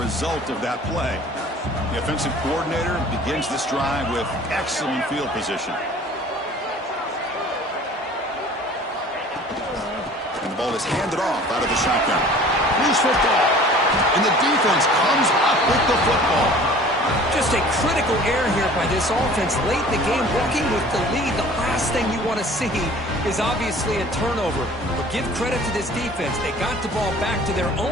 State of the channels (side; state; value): both; normal; correlation 0.47